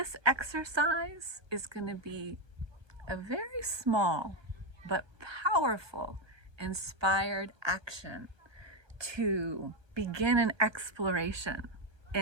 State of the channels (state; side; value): late; left; 1.2 ms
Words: exercise is going to be a very small but powerful inspired action to begin an exploration